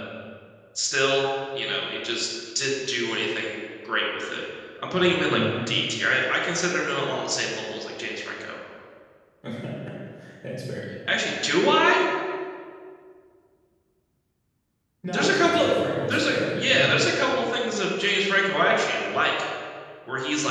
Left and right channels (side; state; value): both; identical; correlation 1.00